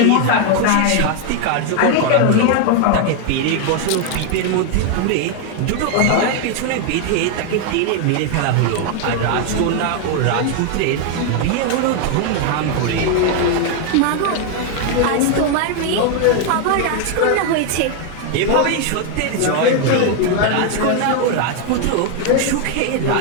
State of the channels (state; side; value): different; both; correlation 0.01